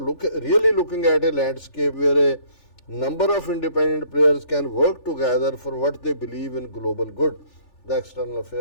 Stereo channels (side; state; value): right; late; 3.4 ms